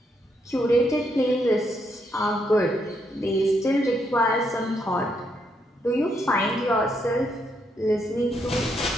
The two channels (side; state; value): both; normal; correlation 0.77